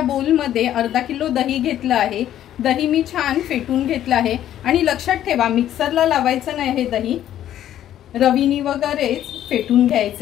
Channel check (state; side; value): quieter; right; 11.7 dB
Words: बोल मध्ये अर्धा किलो दही घेतलं आहे। दही मी छान फेटून घेतलं आहे आणि लक्षात ठेवा मिक्सरला लावायचं नाही, हे दही रवीनी वगैरेच फेटून